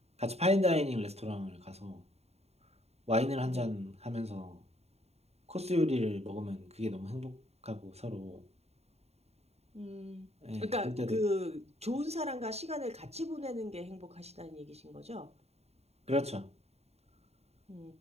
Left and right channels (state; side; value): late; left; 0.30 ms